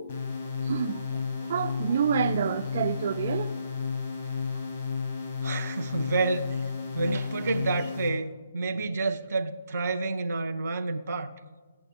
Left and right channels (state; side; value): inverted; both; correlation -0.76